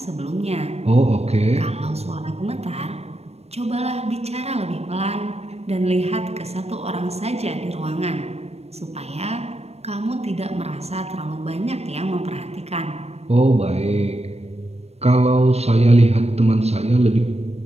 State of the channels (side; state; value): left; late; 0.31 ms